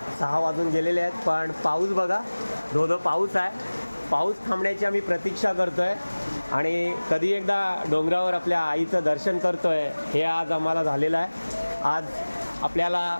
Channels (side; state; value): both; inverted; correlation -1.00